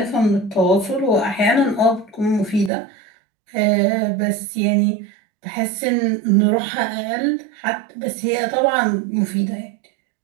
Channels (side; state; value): left; drops out; at 2.7 s